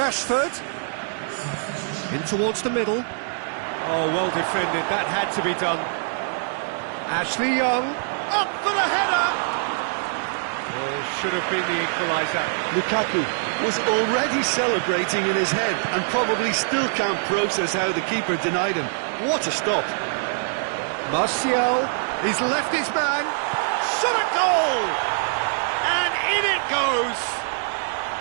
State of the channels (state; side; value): silent; left; digital silence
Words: In towards the middle. Oh, well defended. That had to be done. Ashley Young. Up for the header! Oh, should have been the equaliser. Lukaku was already celebrating in his head and probably still can't process how the keeper denied him. What a stop. Martial. He's left his man. Shot a goal! And in it goes!